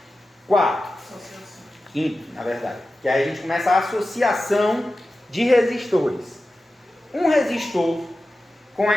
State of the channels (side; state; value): both; normal; correlation 0.94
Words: 4. Associação. Quinto, na verdade. Que aí a gente começa a associação de resistores. Um resistor com